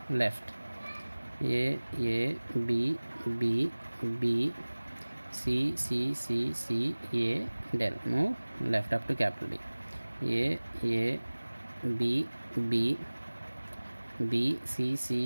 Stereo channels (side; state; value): both; inverted; correlation -1.00